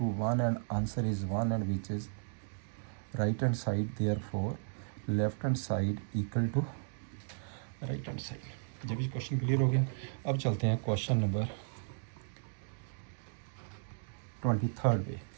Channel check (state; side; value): silent; left; digital silence